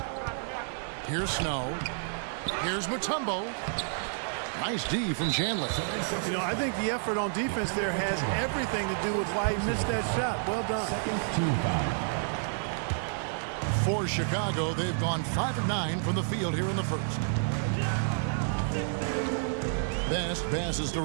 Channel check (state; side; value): silent; left; digital silence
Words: Here's Snow. Here's Mutombo. Nice D from Chandler. You know, I think the effort on defense there has everything to do with why he missed that shot. Well done. For Chicago, they've gone 5 of 9 from the field here in the first. Best passes to